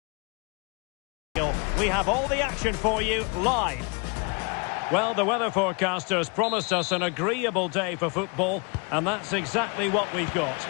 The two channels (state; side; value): quieter; right; 32.7 dB